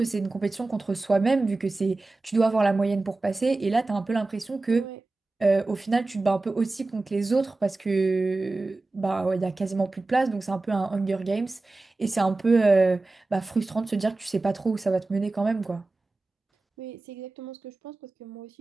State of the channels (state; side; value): quieter; left; 3.3 dB